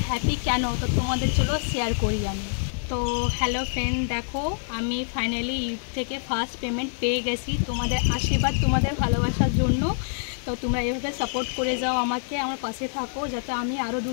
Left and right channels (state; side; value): silent; right; 61 dB below the other